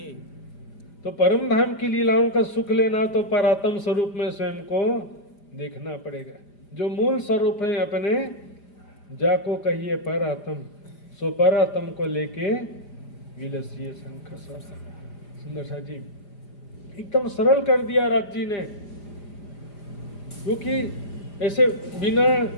तो परम धाम की लीलाओं का सुख लेना तो परात्म स्वरूप में स्वयं को देखना पड़ेगा। जो मूल स्वरूप है अपने, जाको कहिए परात्म, सो परात्म को लेके विलसिए शंख। सुंदर सा जी एकदम सरल कर दिया राज जी ने, क्योंकि ऐसे बिना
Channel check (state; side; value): late; right; 5.0 ms